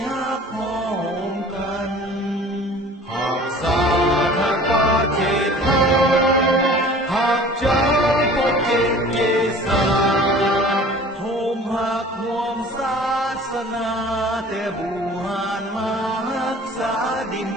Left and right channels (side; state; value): both; normal; correlation 0.45